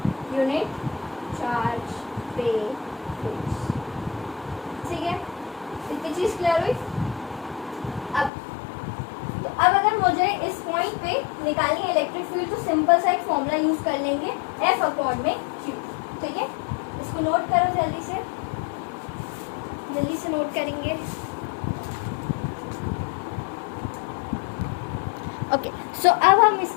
यूनिट चार्ज पे फोर्स, ठीक है। इतनी चीज क्लियर हुई। अब अगर मुझे इस पॉइंट पे निकालनी है इलेक्ट्रिक फील्ड, तो सिंपल सा एक फॉर्मूला यूज कर लेंगे, F अपॉन में Q, ठीक है। इसको नोट करो, जल्दी से नोट करेंगे। ओके, सो अब हम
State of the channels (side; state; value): right; drops out; at 8.3 s